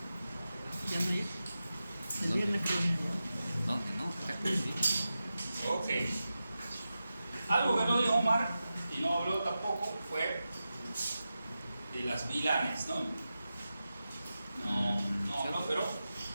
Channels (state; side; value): inverted; both; correlation -0.92